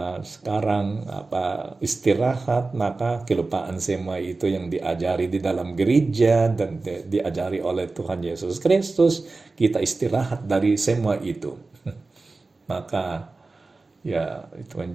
sekarang istirahat, maka kelupaan semua itu yang diajari di dalam gereja dan diajari oleh Tuhan Yesus Kristus, kita istirahat dari semua itu. Maka ya itu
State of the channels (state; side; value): quieter; left; 3.6 dB